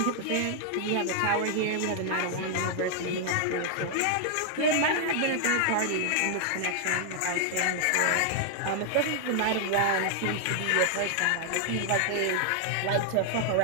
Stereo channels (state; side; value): different; both; correlation 0.00